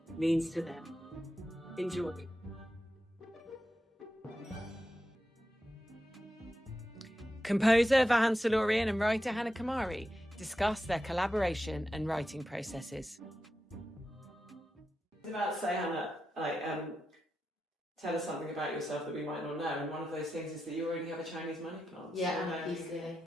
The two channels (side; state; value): both; normal; correlation 0.89